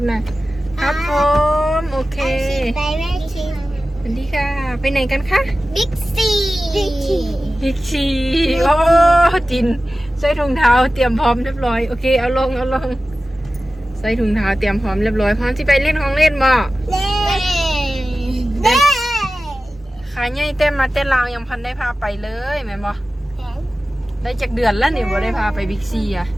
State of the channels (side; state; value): both; normal; correlation 0.95